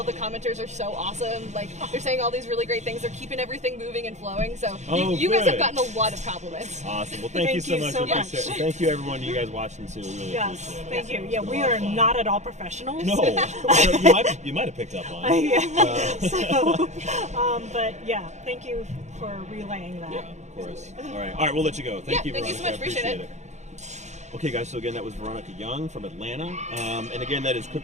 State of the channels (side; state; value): left; late; 0.33 ms